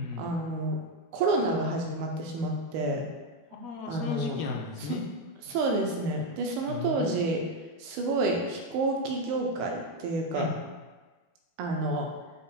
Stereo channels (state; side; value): late; left; 19 ms